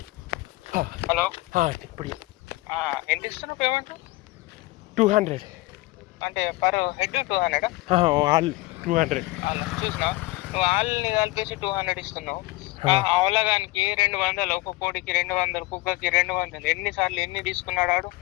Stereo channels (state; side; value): quieter; right; 21.0 dB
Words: హలో, ఇప్పుడు ఎంత ఇస్తున్నావు పేమెంట్? 200 అంటే పర్ హెడ్ 200? ఆల్ 200. చూసినా నువ్వు ఆల్ని కలిపేసి 200 ఇస్తున్నావు. అవలగానికి 200, ఒక కోడికి 200, కుక్కకి 200. ఎన్నిసార్లు ఎన్ని తీసుకున్నాడు ఆడు?